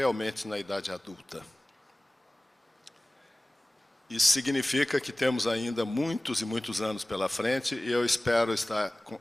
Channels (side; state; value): both; normal; correlation 0.98